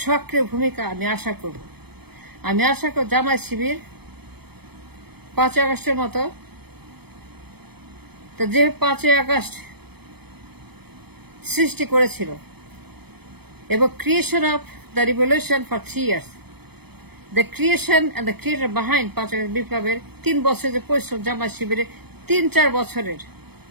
সক্রিয় ভূমিকা আমি আশা করব। জামায়াত শিবির 5 আগস্টের মতো, তো যে 5 আগস্ট সৃষ্টি করেছিল এবং creation of the revolution for 3 years. The creation and the creator behind 5 August বিপ্লবের 3 বছরের যে পরিশ্রম জামায়াত শিবিরের 3-4 বছরের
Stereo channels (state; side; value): late; left; 0.97 ms